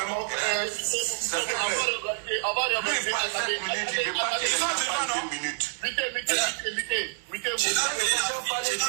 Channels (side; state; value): left; silent; 60 dB below the other